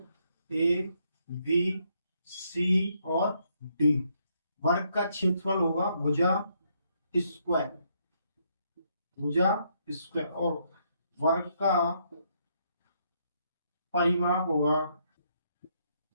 ए बी सी और डी। वर्ग का क्षेत्रफल होगा भुजा स्क्वायर, भुजा स्क्वायर, और वर्ग का परिमाप होगा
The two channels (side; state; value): both; inverted; correlation -0.74